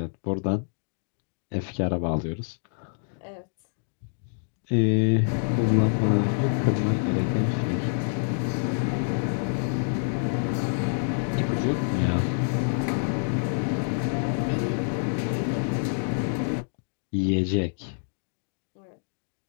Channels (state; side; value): silent; right; digital silence